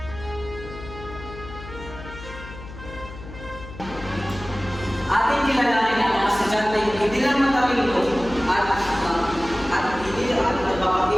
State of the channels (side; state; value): left; noise; hum, 13 dB below the sound